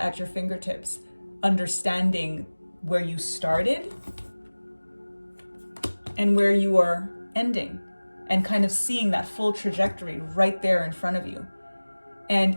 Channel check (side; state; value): both; inverted; correlation -1.00